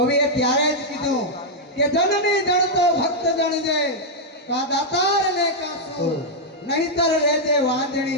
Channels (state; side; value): normal; both; correlation -0.04